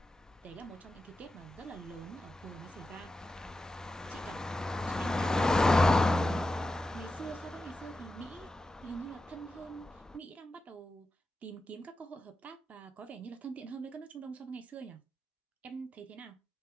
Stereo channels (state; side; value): normal; both; correlation 0.91